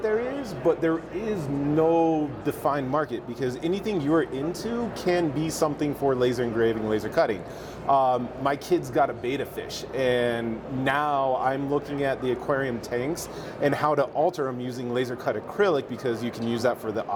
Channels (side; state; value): both; identical; correlation 1.00